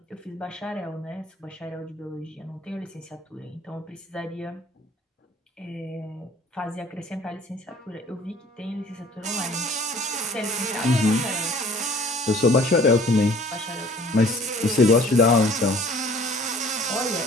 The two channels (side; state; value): both; normal; correlation 0.51